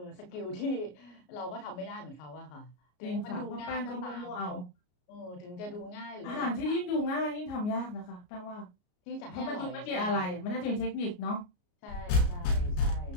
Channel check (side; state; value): right; late; 33 ms